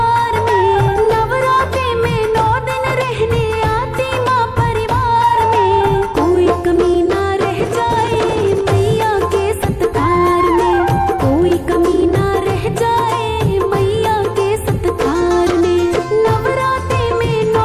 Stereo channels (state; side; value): identical; both; correlation 1.00